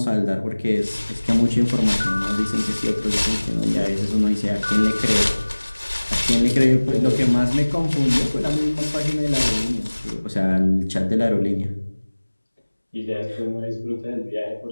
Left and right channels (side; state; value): both; inverted; correlation -1.00